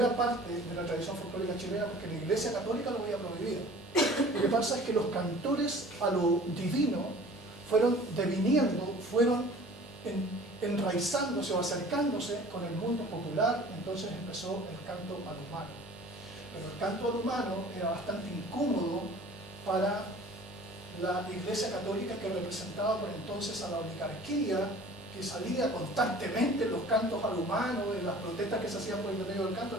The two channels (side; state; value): both; normal; correlation 0.46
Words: parte de la tradición folclórica chilena porque la Iglesia Católica lo había prohibido. Lo que pasa es que los cantores a lo divino fueron deviniendo, fueron enraizándose o acercándose con el mundo popular. Entonces empezó el canto al humano. Pero el canto al humano era bastante incómodo para la Iglesia Católica, que representaba por entonces a la oligarquía, que salía constantemente en los cantos al humano, en las protestas que se hacían por el medio del canto.